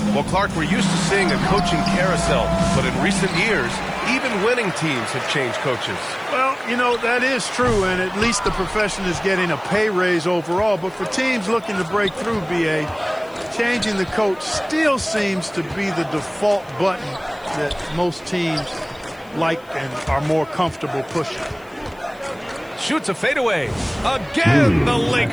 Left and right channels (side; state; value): left; noise; hiss, 30 dB below the sound